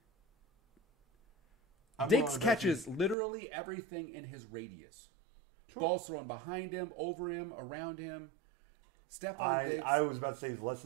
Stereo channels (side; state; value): left; drops out; at 3.2 s